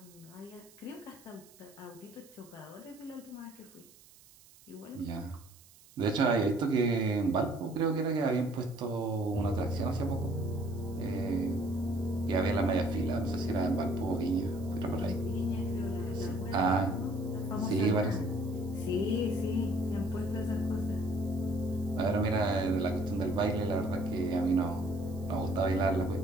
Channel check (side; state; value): right; noise; hiss, 25 dB below the sound